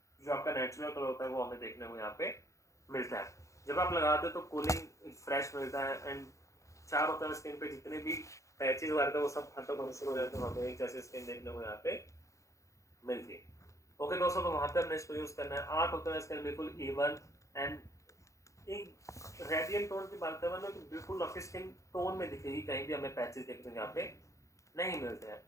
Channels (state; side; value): late; right; 0.15 ms